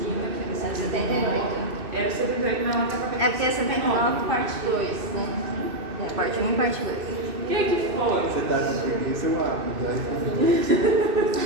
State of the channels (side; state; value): left; late; 2.6 ms